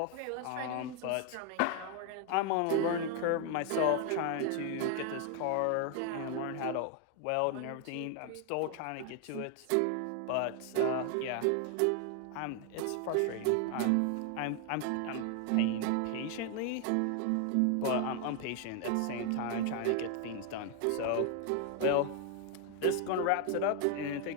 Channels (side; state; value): both; different; correlation 0.00